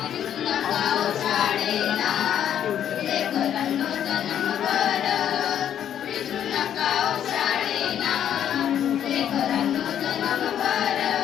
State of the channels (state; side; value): quieter; right; 9.8 dB